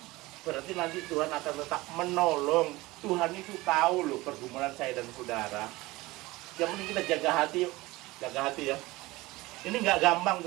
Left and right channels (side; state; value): left; quieter; 20.3 dB